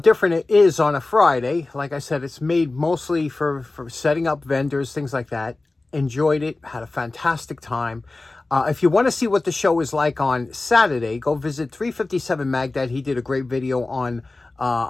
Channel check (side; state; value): right; quieter; 3.2 dB